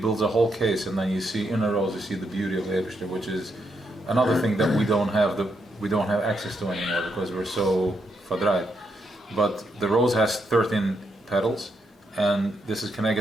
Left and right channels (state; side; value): normal; both; correlation 0.80